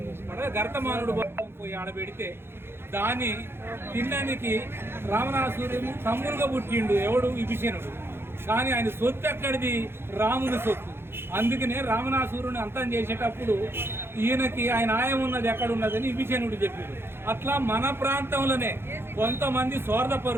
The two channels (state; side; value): late; left; 0.11 ms